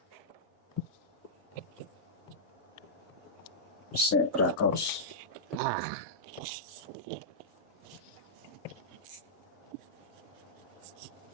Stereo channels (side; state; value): both; normal; correlation -0.11